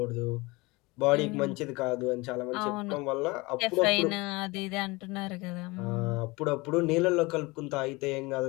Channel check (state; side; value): quieter; right; 24.0 dB